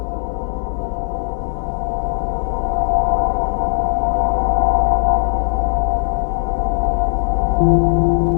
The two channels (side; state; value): right; silent; digital silence